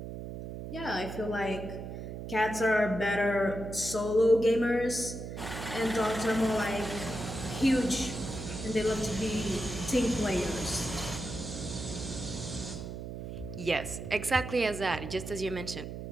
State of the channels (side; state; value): right; noise; hum, 8 dB below the sound